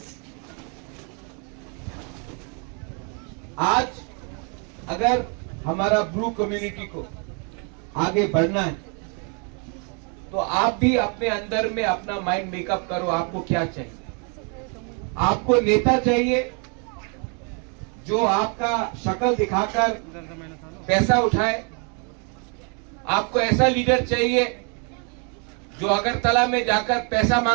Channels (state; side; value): quieter; left; 37.7 dB